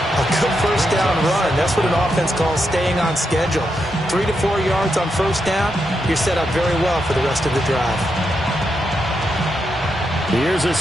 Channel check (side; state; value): both; normal; correlation 0.83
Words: good 1st down run. That's what an offense calls staying on schedule. 3 to 4 yards on 1st down, you're set up very well for the rest of the drive. Here's a